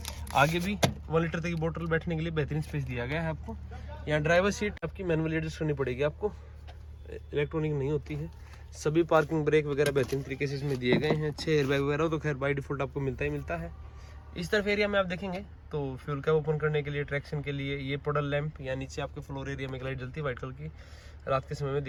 आगे भी 1 लीटर तक की बोतल बैठने के लिए बेहतरीन स्पेस दिया गया है आपको। यहाँ ड्राइवर सीट आपकी मैनुअली एडजस्ट करनी पड़ेगी आपको, इलेक्ट्रॉनिक नहीं होती है। सभी पार्किंग ब्रेक वगैरह बेहतरीन तरीके से इसमें दिए गए हैं। 6 एयरबैग वगैरह तो खैर बाय डिफॉल्ट आपको मिलता ही मिलता है। इस तरफ एरिया में आप देखेंगे तो फ्यूल कैप ओपन करने के लिए, ट्रैक्शन के लिए ये पोडल लैंप या नीचे आपके फ्लोर एरिया में एक लाइट जलती है वाइट कलर की, रात के समय में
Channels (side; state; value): both; identical; correlation 1.00